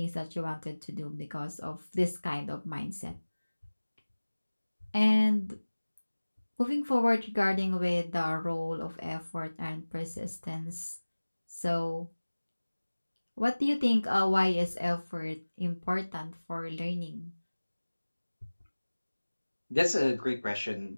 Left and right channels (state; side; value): inverted; both; correlation -1.00